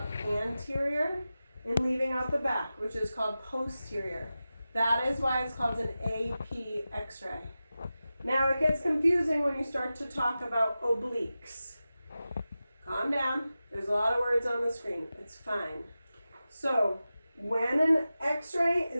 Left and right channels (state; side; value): inverted; both; correlation -0.94